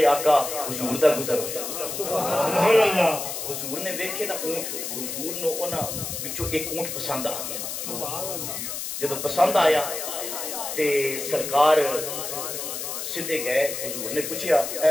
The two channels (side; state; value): left; noise; hiss, 5 dB below the sound